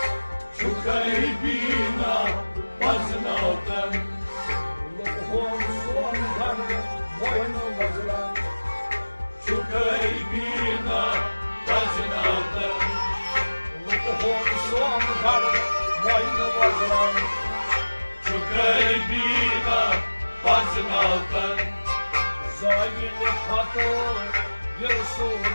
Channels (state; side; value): inverted; both; correlation -1.00